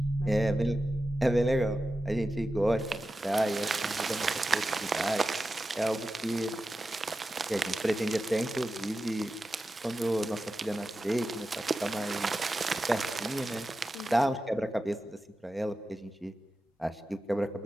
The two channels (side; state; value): both; normal; correlation 0.92